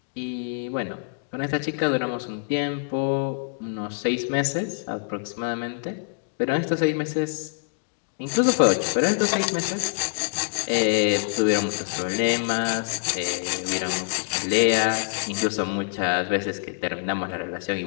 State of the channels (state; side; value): silent; right; digital silence